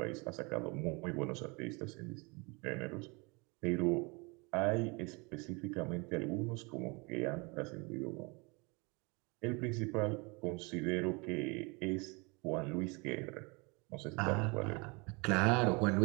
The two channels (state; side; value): quieter; left; 28.8 dB